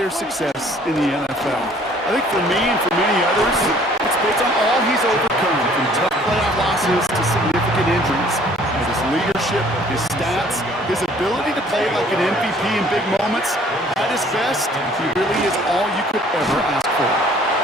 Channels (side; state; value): both; normal; correlation 0.56